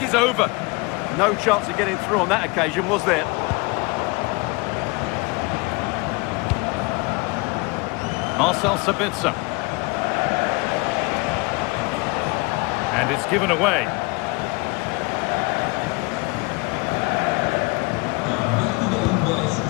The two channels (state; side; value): quieter; right; 26.7 dB